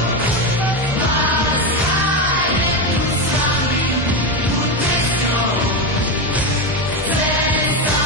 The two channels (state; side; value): normal; both; correlation 0.13